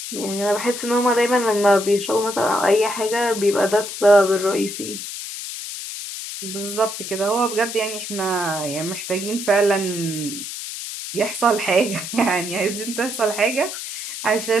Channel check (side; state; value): left; noise; hiss, 8 dB below the sound